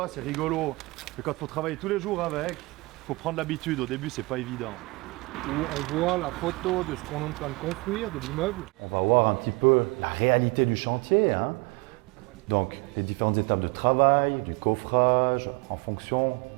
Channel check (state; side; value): quieter; left; 25.1 dB